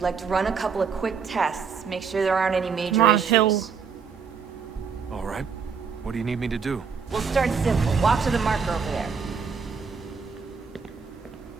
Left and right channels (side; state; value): left; quieter; 5.9 dB